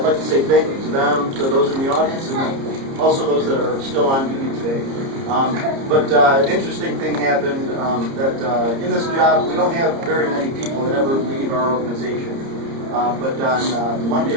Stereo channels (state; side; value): late; left; 30 ms